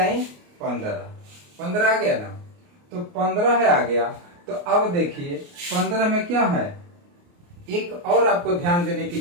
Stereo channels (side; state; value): left; late; 29 ms